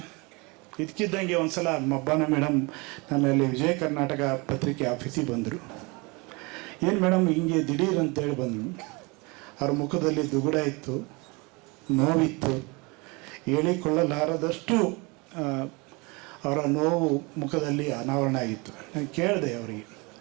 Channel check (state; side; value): quieter; left; 27.5 dB